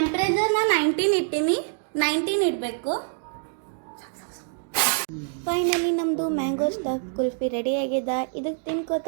19 ಇಟ್ಟೀನಿ, 19 ಇಡಬೇಕು. ಫೈನಲಿ ನಮ್ಮದು ಮ್ಯಾಂಗೋ ಸ್ಟಫ್ ಕುಲ್ಫಿ ರೆಡಿ ಆಗಿದೆ. ಇದಕ್ಕೆ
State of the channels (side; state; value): left; silent; digital silence